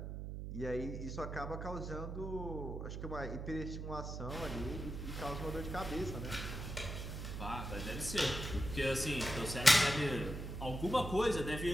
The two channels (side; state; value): right; noise; hum, 6 dB below the sound